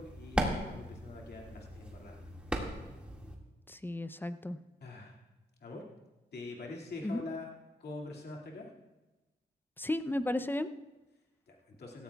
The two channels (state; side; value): normal; both; correlation 0.82